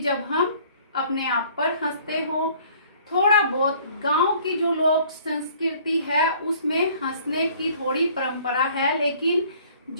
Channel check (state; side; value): inverted; both; correlation -0.55